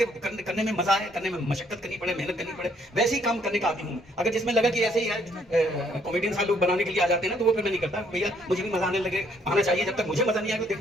में मजा है, करने में मशक्कत करनी पड़े, मेहनत करनी पड़े, वैसे ही काम करने का आदमी हूँ। अगर जिसमें लगा कि ऐसे ही है कॉमेडियन सा लोग बनाने के लिए आ जाते हैं ना, तो वो फिर मैं नहीं करता। भैया मुझे भी मजा आना चाहिए, जब तक मुझे मजा नहीं आएगा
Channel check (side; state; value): both; normal; correlation 0.67